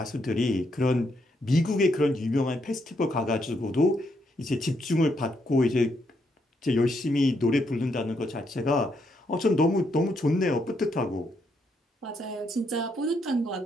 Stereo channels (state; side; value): normal; both; correlation 0.76